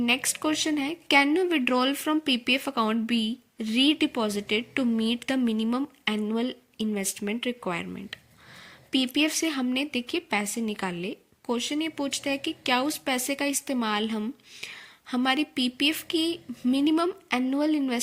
क्वेश्चन है, can you withdrawal from PPF account be redeposited to meet the minimum annual investment requirement. PPF से हमने देखिए पैसे निकाले, क्वेश्चन ये पूछता है कि क्या उस पैसे का इस्तेमाल हम हमारी पीपीएफ की मिनिमम एनुअल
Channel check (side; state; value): both; identical; correlation 1.00